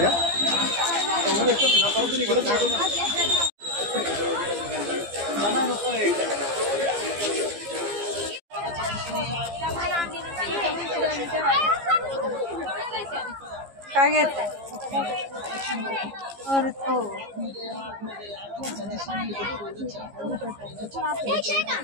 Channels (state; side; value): late; left; 15 ms